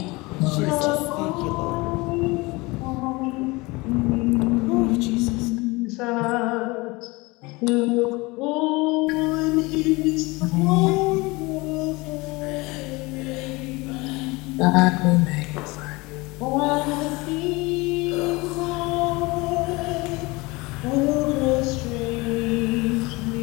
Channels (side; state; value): right; quieter; 23.7 dB